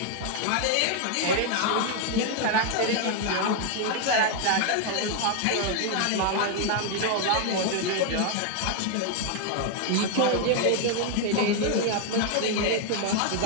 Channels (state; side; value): different; both; correlation 0.01